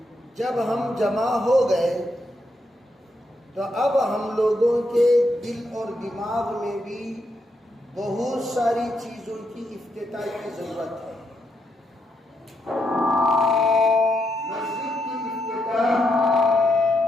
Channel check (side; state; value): both; normal; correlation 0.80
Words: جب ہم جمع ہو گئے تو اب ہم لوگوں کے دل اور دماغ میں بھی بہت ساری چیزوں کی افتتاح کی ضرورت ہے۔ مسجد کی افتتاح